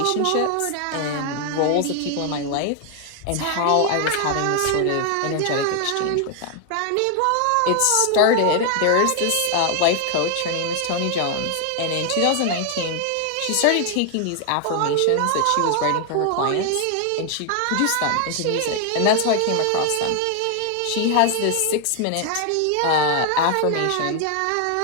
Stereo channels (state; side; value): different; both; correlation 0.00